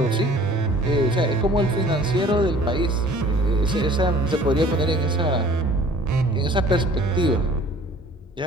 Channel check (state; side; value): normal; both; correlation 0.51